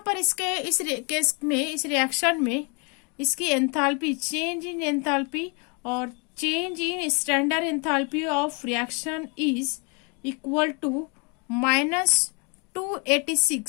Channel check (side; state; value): right; quieter; 33.6 dB